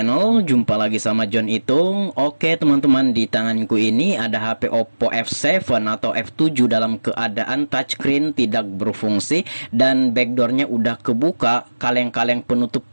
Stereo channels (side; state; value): both; inverted; correlation -1.00